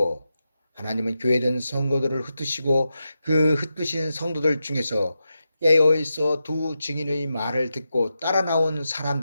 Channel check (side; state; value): both; inverted; correlation -0.89